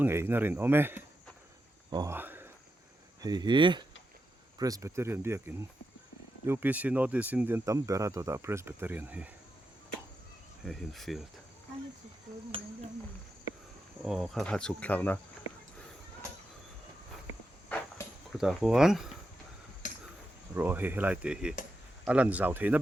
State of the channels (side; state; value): both; normal; correlation 0.87